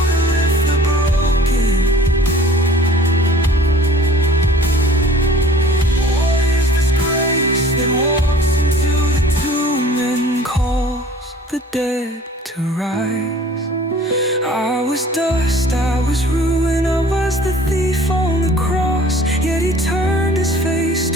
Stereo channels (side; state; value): both; normal; correlation 0.50